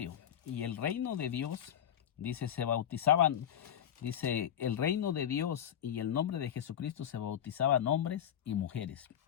y el reino de Dios, dice, se bautizaban, dice, el reino de Dios y el nombre de Jesucristo se bautizaban hombres y mujeres.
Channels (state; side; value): quieter; right; 9.8 dB